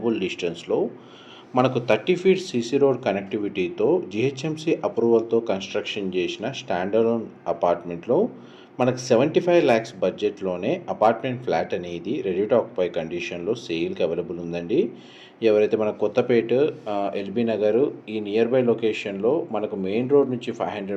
డిస్టెన్స్లో మనకు 30 ఫీట్ సీసీ రోడ్ కనెక్టివిటీతో జిహెచ్ఎంసీ అప్రూవల్తో కన్స్ట్రక్షన్ చేసిన స్టాండర్డ్ అపార్ట్మెంట్లో మనకు 75 lakhs బడ్జెట్లోనే అపార్ట్మెంట్ ఫ్లాట్ అనేది రెడీ టు ఆక్యుపై కండిషన్లో సేల్కి అవైలబుల్ ఉందండి. ఎవరైతే మన కొత్తపేట ఎల్బీ నగర్ ఈ నియర్ బై లొకేషన్లో మనకు మెయిన్ రోడ్ నుంచి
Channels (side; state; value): both; identical; correlation 1.00